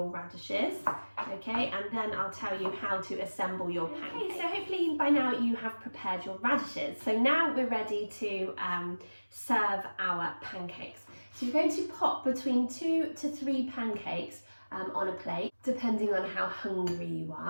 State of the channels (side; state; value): both; inverted; correlation -1.00